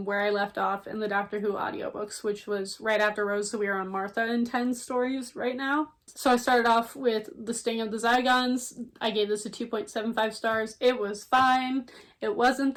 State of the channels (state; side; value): identical; both; correlation 1.00